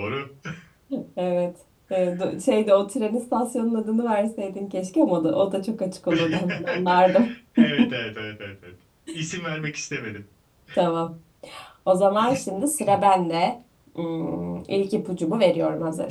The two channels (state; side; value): identical; both; correlation 1.00